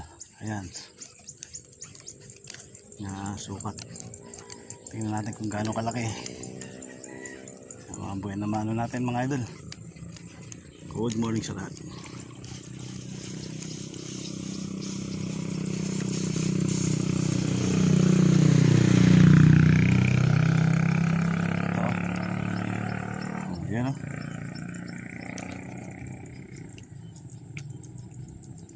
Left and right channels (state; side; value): identical; both; correlation 1.00